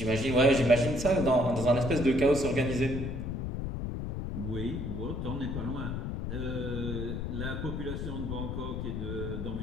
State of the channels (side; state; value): left; noise; rumble, 4 dB below the sound